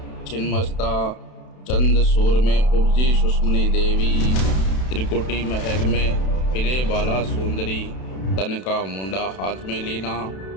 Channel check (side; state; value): right; late; 32 ms